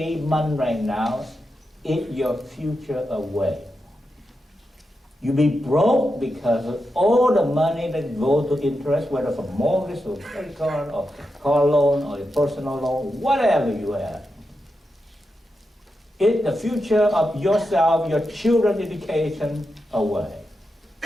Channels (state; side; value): normal; both; correlation 0.88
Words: month right now eat your future away. You be broke because of all the money that goes to interest, whether from mortgage or credit card or car loan or a personal loan, whatever you have. Eat the future of yourself, your children's education away.